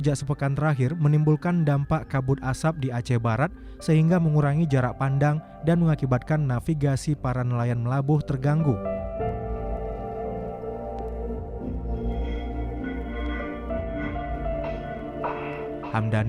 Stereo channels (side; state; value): both; identical; correlation 1.00